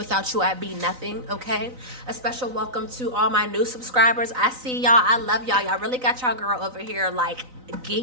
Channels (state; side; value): late; left; 3.9 ms